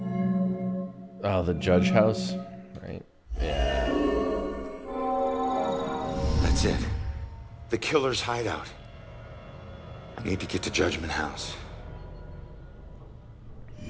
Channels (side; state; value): both; identical; correlation 1.00